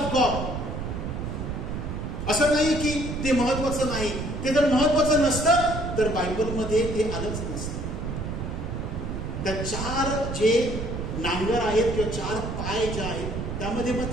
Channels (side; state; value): right; noise; rumble, 5 dB below the sound